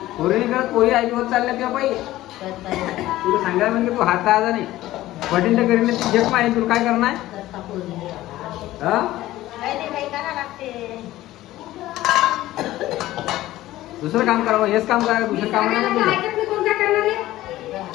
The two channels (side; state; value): right; quieter; 15.7 dB